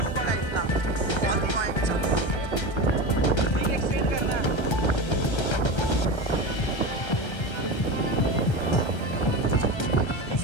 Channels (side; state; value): right; late; 1.3 ms